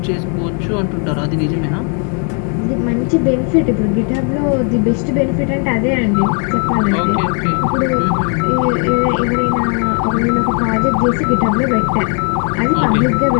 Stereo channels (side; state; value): right; quieter; 39.5 dB